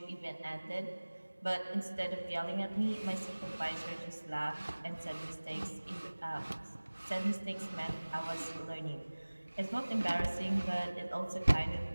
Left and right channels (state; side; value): inverted; both; correlation -1.00